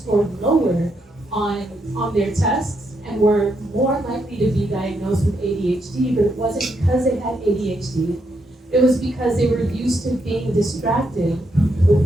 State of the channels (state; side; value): normal; both; correlation 0.79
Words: lower on their tests and were more likely to be diagnosed with ADHD, but it wasn't because they had ADHD. It was because they were used to being distracted